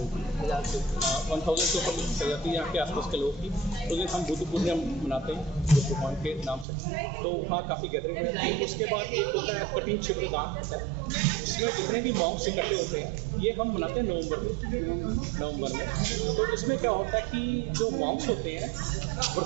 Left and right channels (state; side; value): drops out; left; at 6.7 s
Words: 1000 से 1000 से ऊपर चल जाती है यहाँ के आसपास के लोग की। तो दिन हम बुद्ध पूर्णिमा मनाते हैं बुद्ध भगवान के नाम से। तो वहाँ काफ़ी गैदरिंग हो जाती है। उसके बाद एक होता है कठिन शिविर दान होता है, जिसमें जितने भी मॉन्क्स इकट्ठे होते हैं, ये हम मनाते हैं नवंबर में। तो इसमें क्या होता है कि जो मॉन्क्स होते हैं